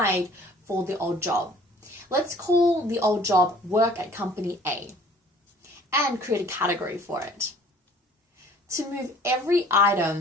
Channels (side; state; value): both; normal; correlation 0.53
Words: for the old job. Let's call the old job Work at Company A and create a category for it. To move every